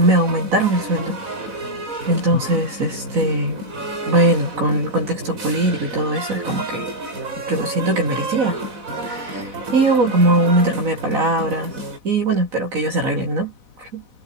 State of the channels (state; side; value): late; left; 4.0 ms